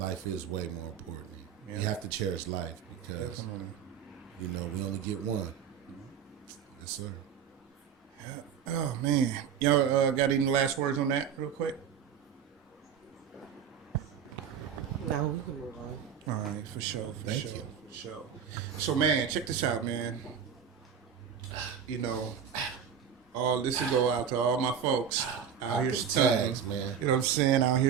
is way more important. Yeah. You have to cherish life because, Definitely. you know, we only get one. Yes, sir. Oh man, y'all got any last words on that, real quick? No, we can move on. All right, for sure, for Thank sure, you. for sure. So man, check this out, man. You know, all this will go out to all my folks out here the stunting. tags, man. You know what I'm saying? Out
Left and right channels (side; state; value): left; quieter; 7.8 dB